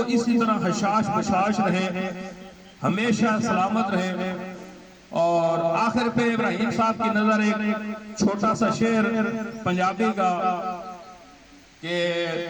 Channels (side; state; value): both; identical; correlation 1.00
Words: اسی طرح حشاش بشاش رہے، ہمیشہ سلامت رہے، اور آخر پہ ابراہیم صاحب کی نظر ایک چھوٹا سا شعر پنجابی کا کہ